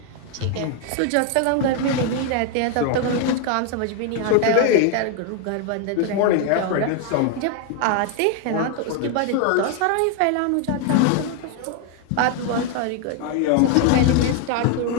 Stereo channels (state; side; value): different; both; correlation 0.01